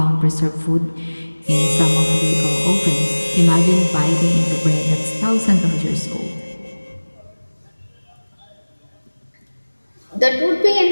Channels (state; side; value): inverted; both; correlation -1.00